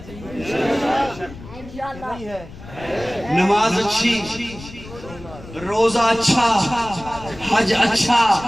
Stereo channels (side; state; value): left; noise; rumble, 16 dB below the sound